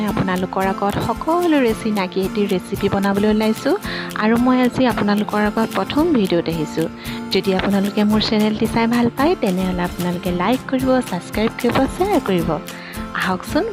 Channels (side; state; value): both; identical; correlation 1.00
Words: আপোনালোকৰ আগত সকলোৰে চিনাকি এটি ৰেচিপি বনাবলৈ ওলাইছোঁ আৰু মই আজি আপোনালোকৰ আগত প্ৰথম ভিডিঅ'ত আহিছোঁ। যদি আপোনালোকে মোৰ চেনেলটি চাই ভাল পায় তেনেহ'লে আপোনালোকে লাইক কৰিব, ছাবস্ক্ৰাইব কৰিব, শ্বেয়াৰ কৰিব। আহকচোন